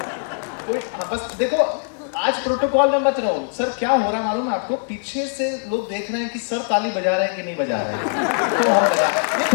कोई बस देखो, आज प्रोटोकॉल में मत रहो। सर क्या हो रहा है मालूम है आपको? पीछे से लोग देख रहे हैं कि सर ताली बजा रहे हैं कि नहीं बजा रहे हैं, तो हम बजा। ये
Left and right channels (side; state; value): right; silent; 65 dB below the other